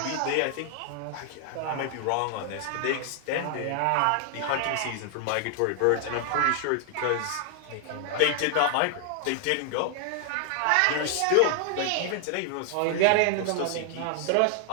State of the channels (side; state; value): both; different; correlation 0.00